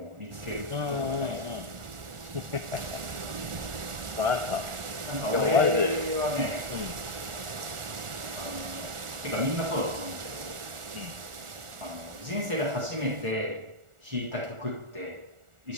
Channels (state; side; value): late; left; 1.4 ms